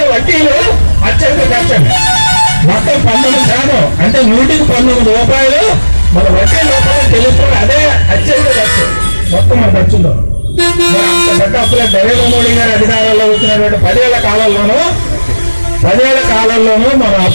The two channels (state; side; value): inverted; both; correlation -1.00